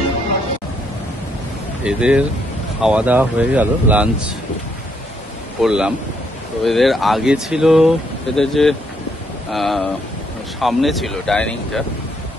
এদের খাওয়া দাওয়া হয়ে গেল, লাঞ্চ করলাম। তো এদের আগে ছিল, এদের যে সামনে ছিল ডাইনিংটা,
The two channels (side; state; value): both; normal; correlation 0.73